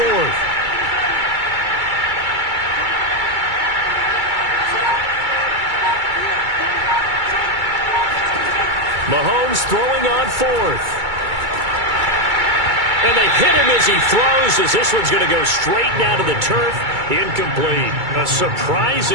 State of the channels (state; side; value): late; left; 2.3 ms